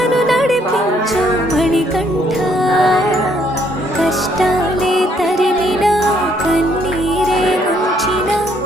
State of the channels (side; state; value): both; normal; correlation 0.68